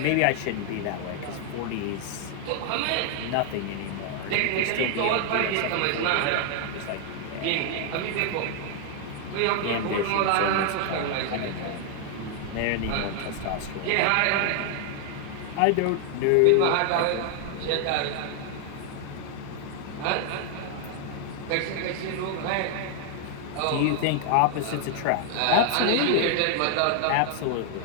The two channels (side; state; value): both; different; correlation 0.00